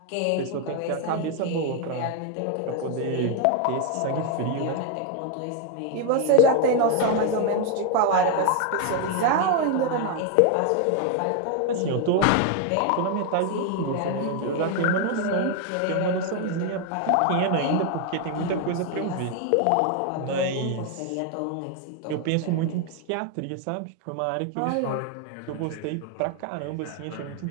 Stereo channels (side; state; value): both; different; correlation 0.01